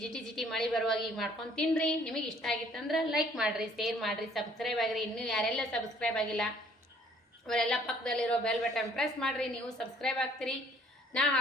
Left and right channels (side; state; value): both; normal; correlation 0.59